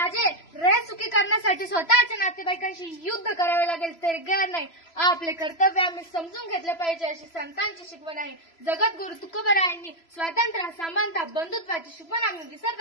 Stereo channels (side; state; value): right; late; 3.0 ms